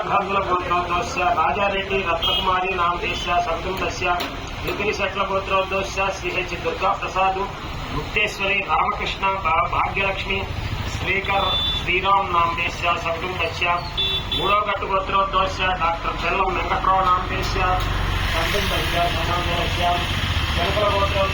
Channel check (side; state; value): both; identical; correlation 1.00